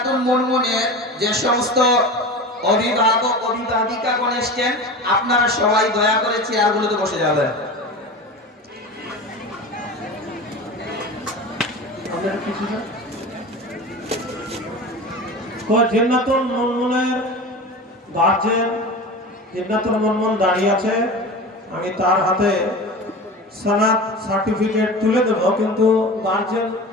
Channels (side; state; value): both; normal; correlation 0.31